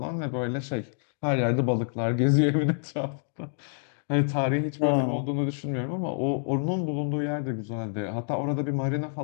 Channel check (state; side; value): silent; right; 60 dB below the other